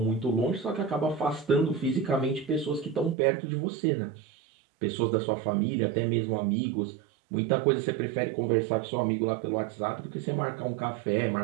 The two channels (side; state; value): left; drops out; at 3.2 s